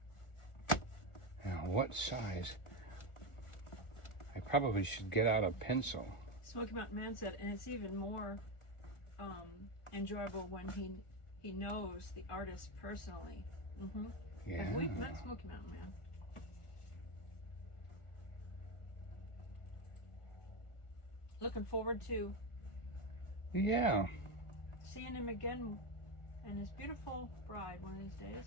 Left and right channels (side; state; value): right; late; 1.4 ms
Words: Now, what size? I probably should get out a pencil. Smoky Mountain Man said, and it's even more enjoyable when he knows the artist personally. Mm-hmm. Yeah. Have we met Smoky Mountain Man? Looking forward to seeing him again and his beautiful bride one of these